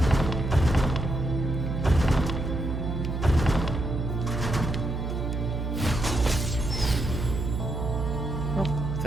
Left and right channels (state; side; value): noise; right; hum, 3 dB below the sound